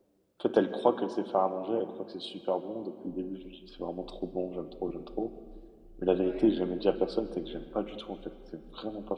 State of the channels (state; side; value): identical; both; correlation 1.00